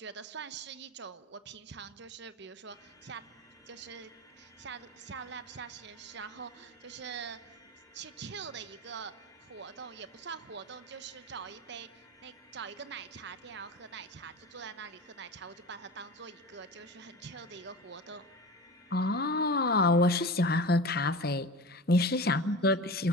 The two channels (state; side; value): normal; both; correlation 0.31